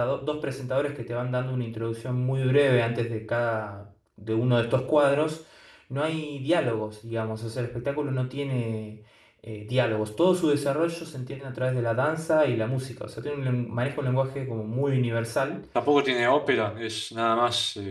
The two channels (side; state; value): both; identical; correlation 1.00